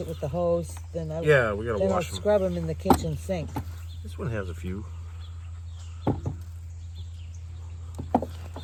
it with the hose. Then We gotta I'll wash them. scrub them in the kitchen sink. This one has a few.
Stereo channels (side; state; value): both; identical; correlation 1.00